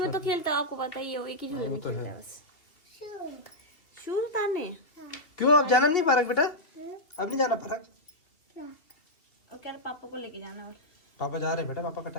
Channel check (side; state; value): right; late; 2.7 ms